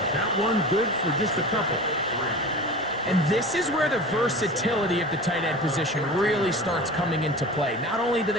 That one good for just a couple. And this is where the versatility of the tight end position really starts coming into play. Not only do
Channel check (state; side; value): normal; both; correlation 0.35